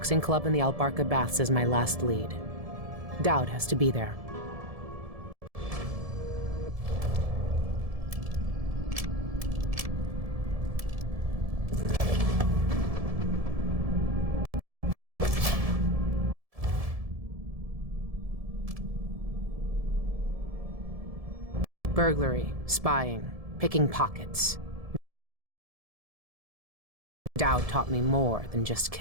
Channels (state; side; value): late; left; 1.7 ms